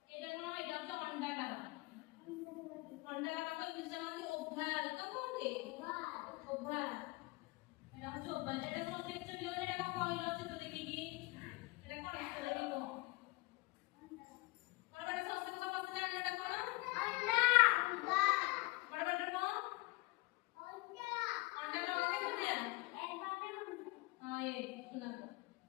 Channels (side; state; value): right; quieter; 23.0 dB